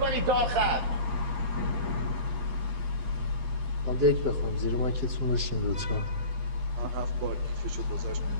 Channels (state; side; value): late; left; 12 ms